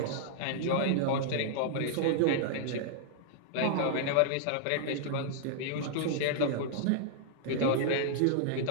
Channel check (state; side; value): different; both; correlation -0.01